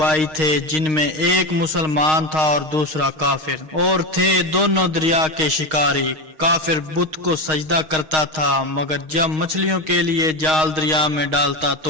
थे, जिनमें एक मुसलमान था और दूसरा काफिर, और थे दोनों दरिया के शिकारी। काफिर बुत को सजदा करता था, मगर जब मछलियों के लिए जाल दरिया में डालता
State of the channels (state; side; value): late; left; 6.4 ms